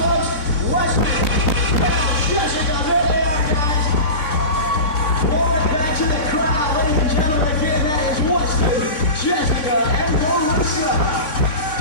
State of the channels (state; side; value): late; right; 3.5 ms